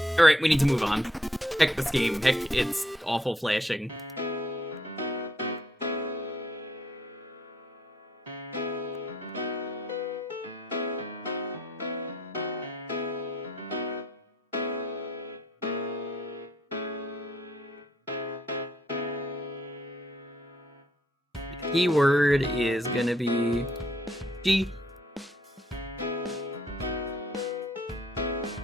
Alright, we need to move on. Heck this game. Heck, it's awful flashing. Keyword is gonna be G.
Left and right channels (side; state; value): both; normal; correlation 0.70